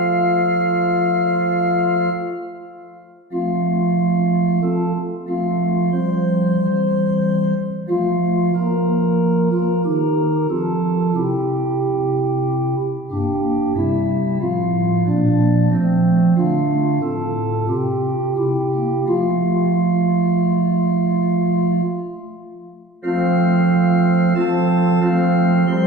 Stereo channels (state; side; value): normal; both; correlation 0.49